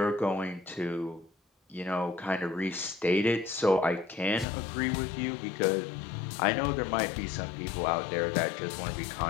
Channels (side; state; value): right; drops out; at 4.5 s